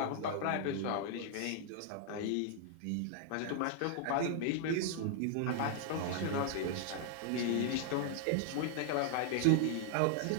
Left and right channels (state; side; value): different; both; correlation 0.00